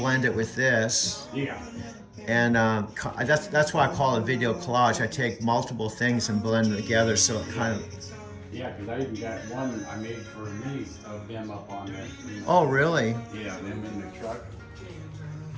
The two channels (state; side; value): identical; both; correlation 1.00